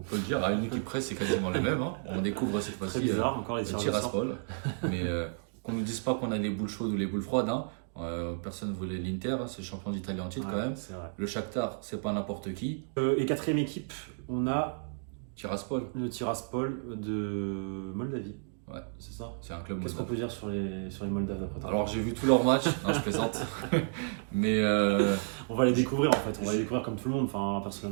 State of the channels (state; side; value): silent; left; digital silence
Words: le dire, à une équipe presse, c'est quasiment le même. Hein. On découvre cette Très fois-ci bizarre, encore les le tireurs au sort. Tiraspol. Mais qu'on ne nous dise pas qu'on a les boules chaudes ou les boules froides. Hein. Personne ne voulait l'Inter, hein, c'est le champion d'Italie en titre Ouais, quand même. c'est vrai. Le Shakhtar, c'est pas n'importe qui. Et quatrième équipe, on a Tiraspol, le Tiraspol de Moldavie. ouais, C'est ça. c'est un club Qu'est-ce qu'on moldave. peut dire sur les Moldaves d'après toi? Alors j'ai vu tous leurs matchs, non je plaisante. Mais On va les découvrir en fait, on va les découvrir comme tout le monde. Enfin,